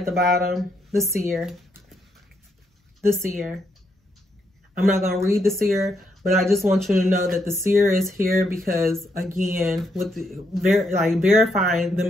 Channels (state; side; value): normal; both; correlation 0.77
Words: the bottom, the seer. The seer. I'm not going to read the seer, but I just want you to know that the seer is here because, again, with verifying the